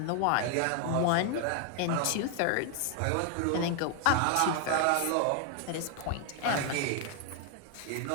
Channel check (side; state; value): both; different; correlation 0.00